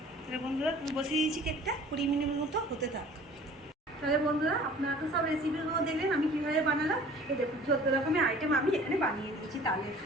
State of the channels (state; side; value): normal; both; correlation 0.48